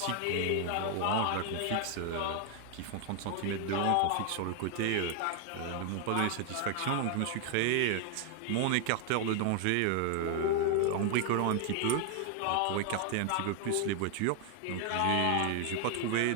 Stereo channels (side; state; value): both; different; correlation 0.00